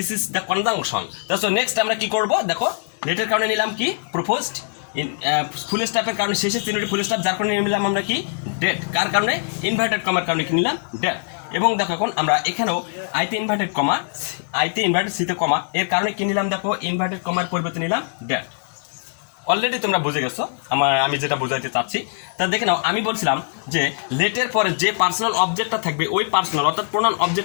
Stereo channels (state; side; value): silent; right; digital silence